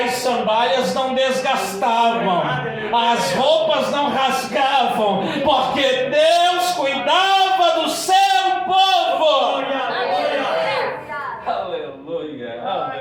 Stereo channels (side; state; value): both; identical; correlation 1.00